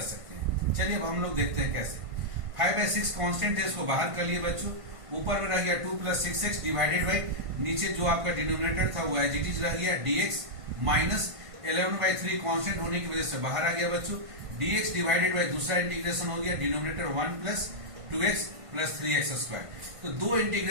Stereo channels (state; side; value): late; left; 1.5 ms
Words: सकते हैं। चलिए अब हम लोग देखते हैं कैसे। 5/6 कांस्टेंट है, इसको बाहर कर लिए बच्चों। ऊपर में रह गया 2 + 6x डिवाइडेड बाई नीचे जो आपका डिनोमिनेटर था वो एज इट इज रह गया dx, माइनस 11/3 कांस्टेंट होने की वजह से बाहर आ गया बच्चों। dx डिवाइडेड बाई दूसरा इंटीग्रेशन हो गया डिनोमिनेटर 1 + 2x + 3x²। तो दो